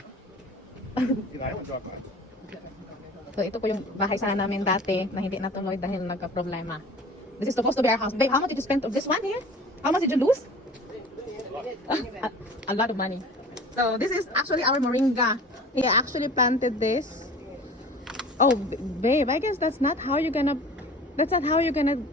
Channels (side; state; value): both; normal; correlation 0.42